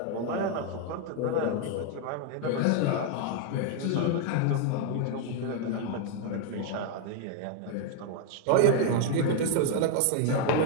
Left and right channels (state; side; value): different; both; correlation 0.00